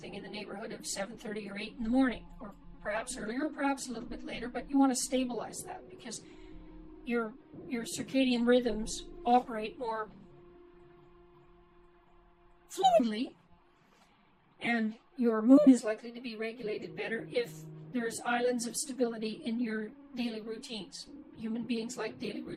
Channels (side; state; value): both; identical; correlation 1.00